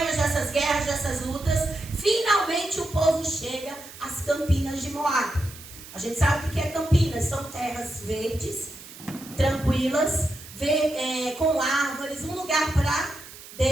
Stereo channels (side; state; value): right; noise; hiss, 16 dB below the sound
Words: dessas guerras, dessas lutas, finalmente o povo chega às Campinas de Moabe. A gente sabe o que é Campinas. São terras verdes, tranquilas, com árvores, um lugar para